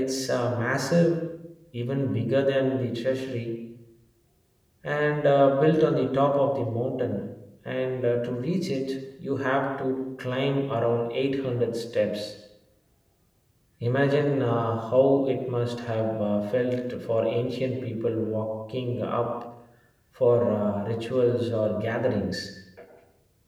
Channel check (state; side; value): identical; both; correlation 1.00